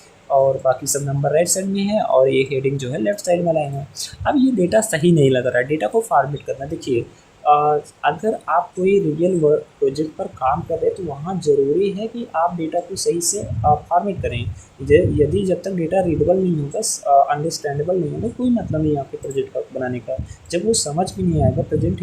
और बाकी सब नंबर राइट साइड में है, और ये हेडिंग जो है लेफ्ट साइड में लाइन है। अब ये डेटा सही नहीं लग रहा है, डेटा को फॉर्मेट करना। देखिए अगर आप कोई रियल वर्क प्रोजेक्ट पर काम कर रहे हैं तो वहाँ ज़रूरी है कि आप डेटा को सही से फॉर्मेट करें। यदि जब तक डेटा रीडेबल नहीं होगा, अंडरस्टैंडेबल नहीं होगा, कोई मतलब नहीं आपके प्रोजेक्ट का बनाने का। जब वो समझ भी नहीं आएगा, प्रेजेंट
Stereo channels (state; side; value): identical; both; correlation 1.00